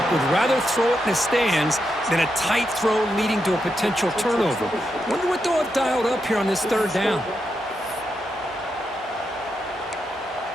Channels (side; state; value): both; normal; correlation 0.84